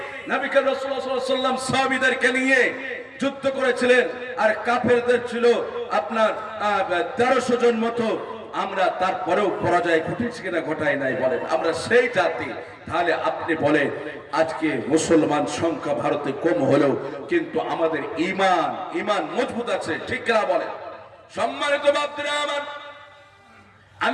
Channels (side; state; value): both; identical; correlation 1.00